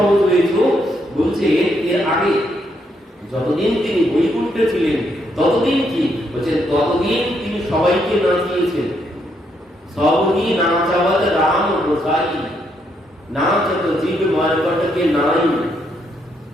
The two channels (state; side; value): normal; both; correlation 0.76